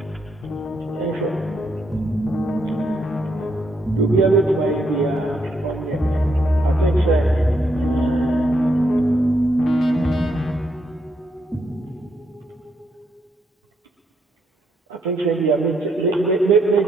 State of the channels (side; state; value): both; normal; correlation 0.76